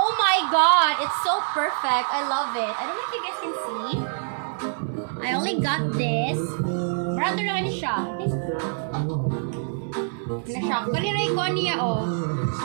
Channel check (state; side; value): silent; left; 62 dB below the other